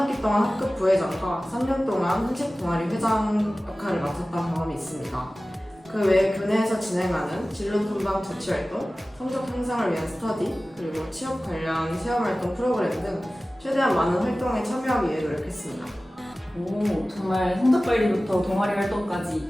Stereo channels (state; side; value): normal; both; correlation 0.97